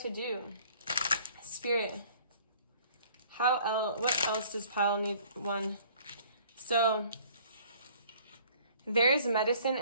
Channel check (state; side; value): inverted; both; correlation -0.54